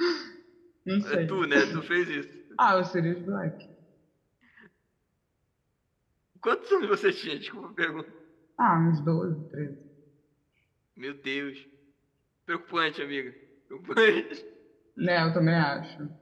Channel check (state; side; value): identical; both; correlation 1.00